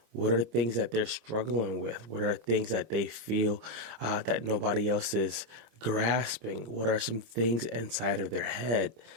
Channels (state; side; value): late; left; 26 ms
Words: What are the things that they're struggling with? What are the things that they feel that nobody else is grasping? What are some things inside of their head?